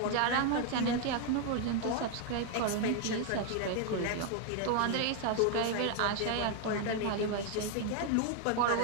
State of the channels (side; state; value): both; different; correlation 0.00